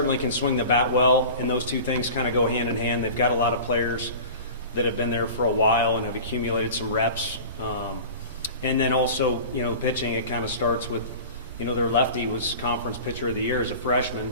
can swing the bat well, and those two things kind of go hand in hand. They've got a lot of players that have been there for a while and have accumulated some reps. And then also, pitching, it kind of starts with, their lefty was conference pitcher of the year as a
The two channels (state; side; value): inverted; both; correlation -0.37